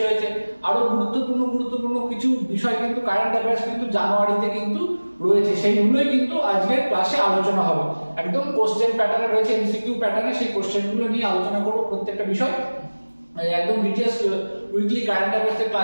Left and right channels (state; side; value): inverted; both; correlation -1.00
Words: হয়েছে, আরো গুরুত্বপূর্ণ কিছু বিষয় কিন্তু কারেন্ট অ্যাফেয়ার্স কিন্তু জানুয়ারিতে কিন্তু রয়েছে, সেইগুলোই কিন্তু আজকের ক্লাসে আলোচনা হবে। একদম কোশ্চেন প্যাটার্নে রয়েছে, এমসিকিউ প্যাটার্নে, সেই কোশ্চেনগুলো নিয়ে আলোচনা করবো প্রত্যেকটা বিষয়। একদম ডিটেইলস উইকলি কারেন্ট অ্যাফেয়ার্স এর